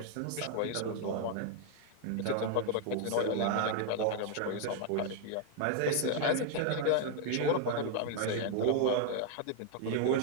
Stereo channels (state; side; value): different; both; correlation 0.00